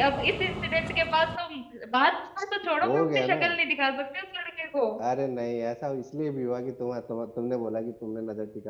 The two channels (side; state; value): both; identical; correlation 1.00